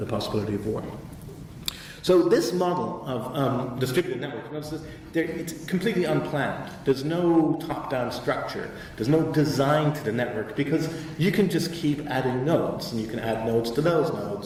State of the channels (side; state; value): both; identical; correlation 1.00